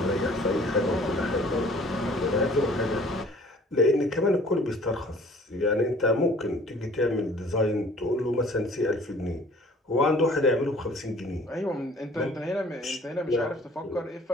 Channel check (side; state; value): both; normal; correlation 0.52